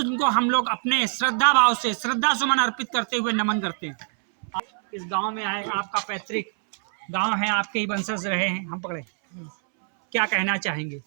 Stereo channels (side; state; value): left; silent; 62 dB below the other